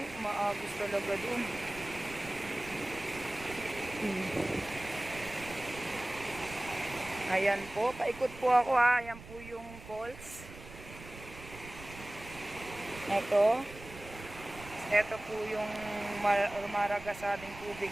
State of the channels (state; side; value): noise; right; rumble, 16 dB below the sound